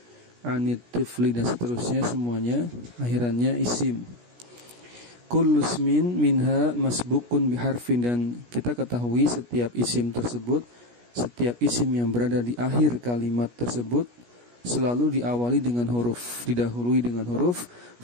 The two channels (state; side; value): late; left; 17 ms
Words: anit tifli dan seterusnya, semuanya akhirannya isim. Kullu ismin minha masbukun biharfin, dan kita ketahui setiap isim tersebut, setiap isim yang berada di akhir kalimat tersebut selalu diawali dengan huruf, didahului dengan huruf.